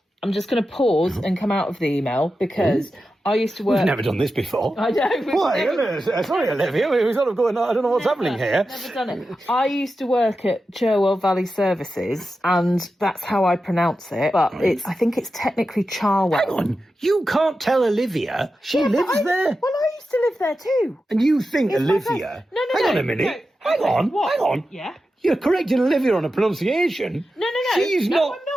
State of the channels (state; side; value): normal; both; correlation 0.91